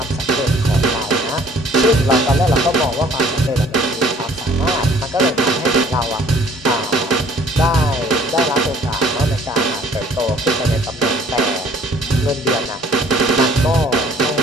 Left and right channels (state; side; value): normal; both; correlation 0.55